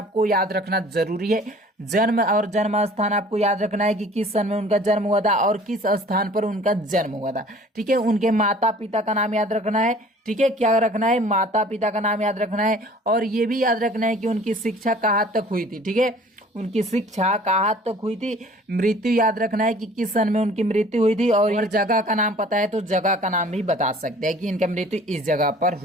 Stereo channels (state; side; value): normal; both; correlation 0.50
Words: याद रखना जरूरी है। जन्म और जन्म स्थान आपको याद रखना है कि किस सन में उनका जन्म हुआ था और किस स्थान पर उनका जन्म हुआ था। ठीक है, उनके माता पिता का नाम याद रखना है। ठीक है, क्या रखना है, माता पिता का नाम याद रखना है। और ये भी याद रखना है कि उनकी शिक्षा कहाँ तक हुई थी। ठीक है, उनकी शिक्षा कहाँ तक हुई थी। मृत्यु याद रखना है कि किस सन में उनकी मृत्यु हुई थी। और जगह का नाम पता है तो जगह का नाम भी बता सकते हैं कि इनका मृत्यु इस जगह पर